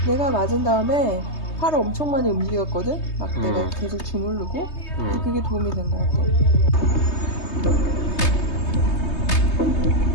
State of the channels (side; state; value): right; late; 3.2 ms